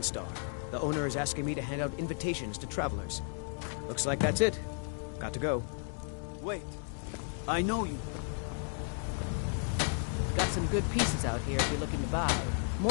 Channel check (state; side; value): silent; right; 55 dB below the other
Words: The owner is asking me to hand out invitations to travelers. Looks like that's it. Got to go. Wait. I know you. Got some good pieces out here if you're looking to buy.